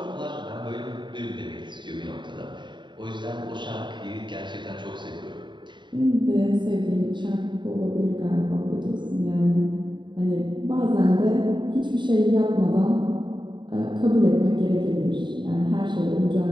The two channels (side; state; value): left; late; 0.23 ms